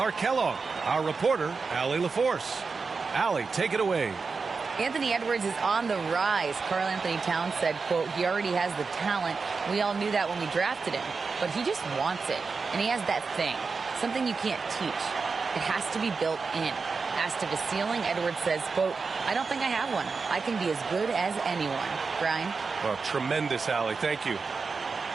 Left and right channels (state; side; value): quieter; left; 4.7 dB